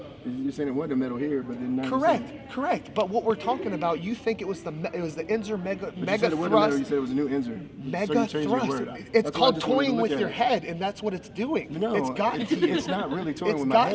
You're saying it wasn't a medal here, but then Correct. But what we're talking about, you think it was the Inzer mega thrust. You said it was a new Inzer. Mega thrust. It's called toying with your head, and that's what it's doing. No, it's gotten to you. It's not really toying with my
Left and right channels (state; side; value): identical; both; correlation 1.00